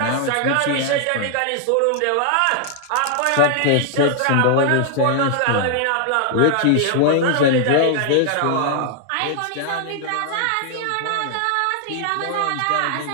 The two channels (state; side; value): different; both; correlation 0.00